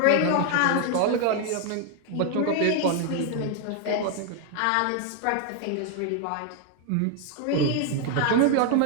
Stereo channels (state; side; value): different; both; correlation 0.00